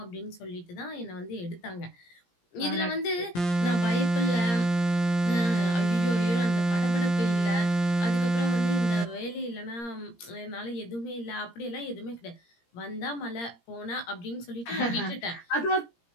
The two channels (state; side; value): late; right; 17 ms